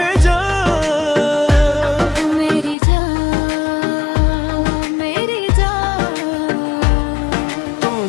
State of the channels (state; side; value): drops out; right; at 2.8 s